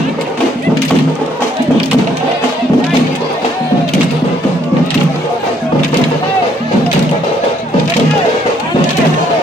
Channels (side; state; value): both; normal; correlation 0.67